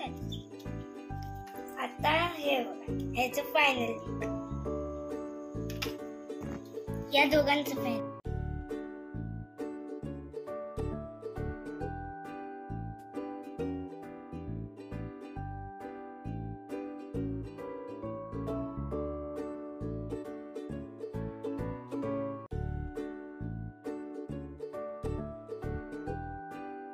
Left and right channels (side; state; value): both; identical; correlation 1.00